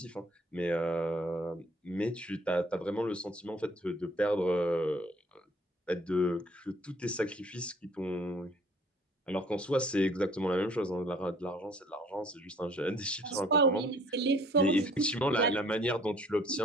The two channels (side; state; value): both; normal; correlation 0.57